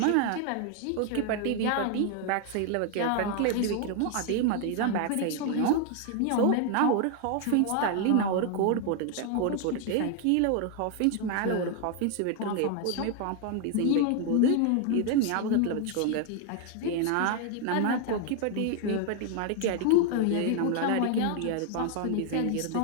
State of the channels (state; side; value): different; both; correlation 0.00